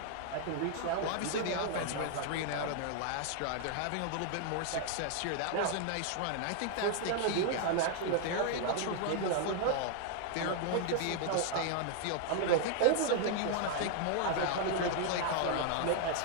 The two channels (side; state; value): both; different; correlation 0.00